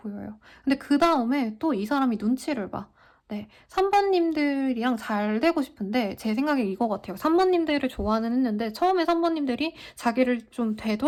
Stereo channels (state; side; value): identical; both; correlation 1.00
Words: 근데 그다음에 또 이 사람이 눈치를 봐. 네. 산모님들이랑 잘 되고 싶은데 제 생각에 이거 같아요. 산모님들을 좋아는 했는데 처음에 산모님들이 자기를 좀